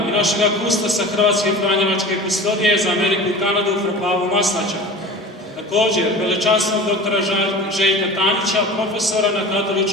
i našega kustosa Hrvatske Franjevačke kustodije za Ameriku i Kanadu Pavu Maslača. Također, velečasnog doktora Željka Tanića, profesora na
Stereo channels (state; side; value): normal; both; correlation 0.35